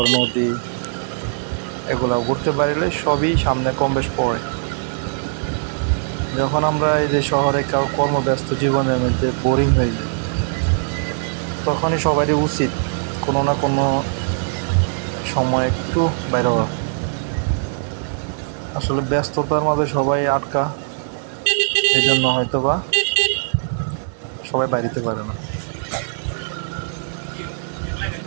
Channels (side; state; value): left; silent; digital silence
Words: নদী, এগুলা ঘুরতে পারলে সবই সামনে কম বেশ পড়ে। যখন আমরা এই যে শহরে কর্মব্যস্ত জীবনের মধ্যে বোরিং হয়ে যাই, তখনই সবারই উচিত কোনো না কোনো সময় একটু বাইরে হওয়া। আসলে ব্যস্ততার মাঝে সবাই আটকা, এই জন্য হয়তো বা সবাই বাড়িতে পারে না।